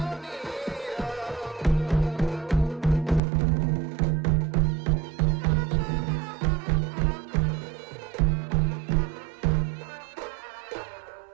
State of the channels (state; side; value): drops out; left; at 3.2 s